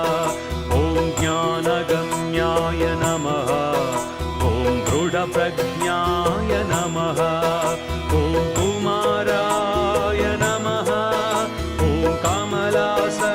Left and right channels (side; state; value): both; identical; correlation 1.00